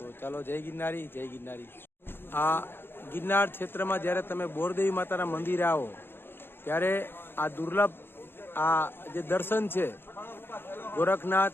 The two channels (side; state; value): right; late; 0.10 ms